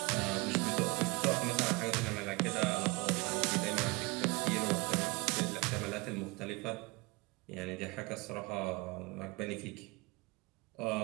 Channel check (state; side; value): quieter; left; 25.8 dB